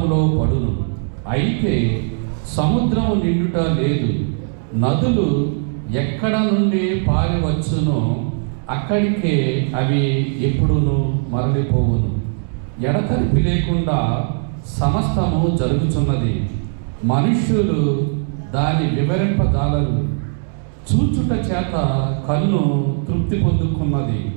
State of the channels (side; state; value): left; silent; 58 dB below the other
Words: పడును, అయితే సముద్రము నిండుట లేదు. నదులు ఎక్కడ నుండి పారి వచ్చునో అక్కడికే అవి ఎప్పుడును మరలిపోవును. ఎడతెరిపి లేకుండా సమస్తము జరుగుతున్నది. మనుష్యులు దాని వివరింపజాలరు. చూచుట చేత కన్ను తృప్తి పొందుకున్నది,